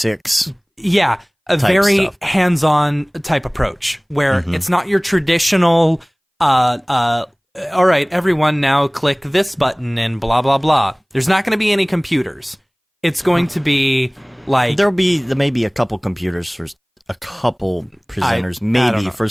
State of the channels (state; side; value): identical; both; correlation 1.00